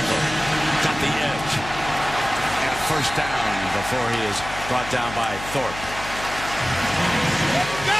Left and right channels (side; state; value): left; noise; hum, 12 dB below the sound